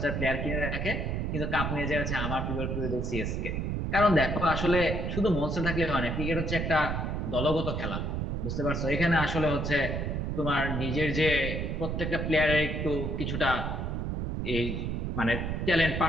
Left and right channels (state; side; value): noise; right; rumble, 1 dB below the sound